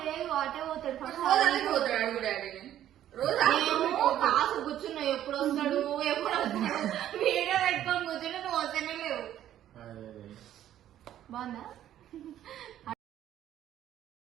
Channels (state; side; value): quieter; left; 11.7 dB